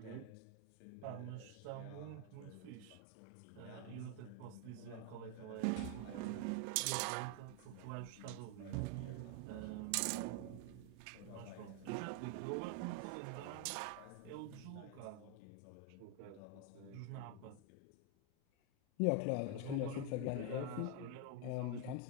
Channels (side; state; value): both; different; correlation 0.01